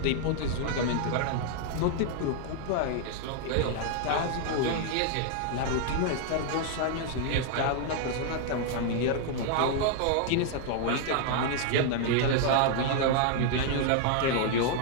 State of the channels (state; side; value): different; both; correlation 0.00